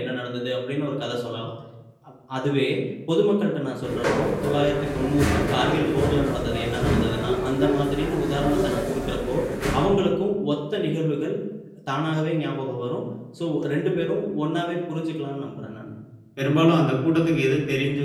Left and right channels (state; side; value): identical; both; correlation 1.00